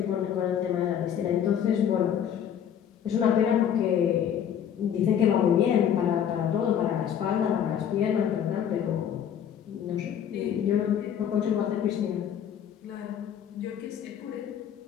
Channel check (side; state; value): right; quieter; 9.1 dB